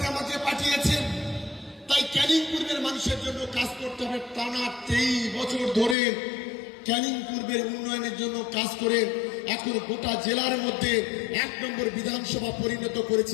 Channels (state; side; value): drops out; right; at 6.0 s